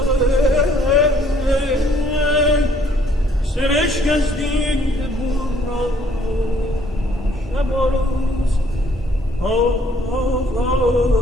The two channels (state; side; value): normal; both; correlation 0.64